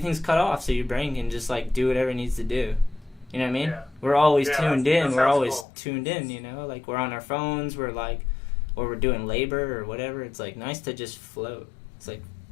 cut off, so your brain can just, like, do whatever it needs to do. You know what I mean? Yeah. We're always tuned in. We're always cool. tuned in, you know? Like, we're on our phones, we're, like, or we're doing labor or whatever. It's, like, nice to just float. It's, like,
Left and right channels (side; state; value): right; drops out; at 5.7 s